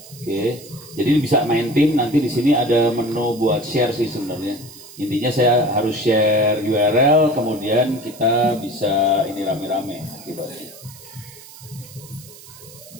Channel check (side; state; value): right; noise; hiss, 19 dB below the sound